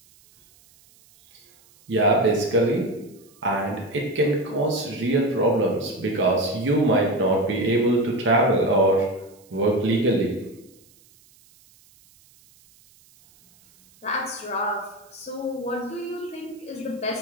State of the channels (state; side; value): noise; right; hiss, 29 dB below the sound